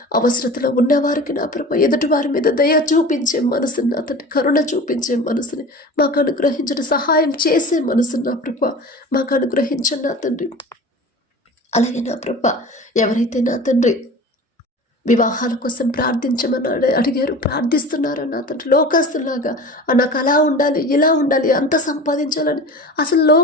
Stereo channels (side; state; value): both; normal; correlation 0.36